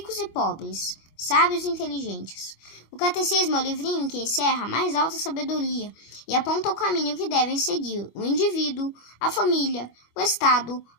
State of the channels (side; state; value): right; late; 25 ms